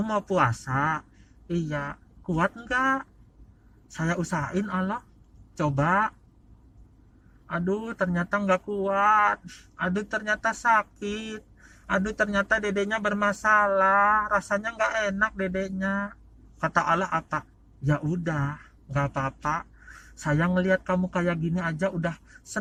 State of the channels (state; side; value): identical; both; correlation 1.00